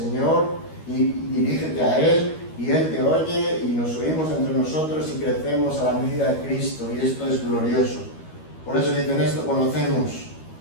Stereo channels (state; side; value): late; right; 13 ms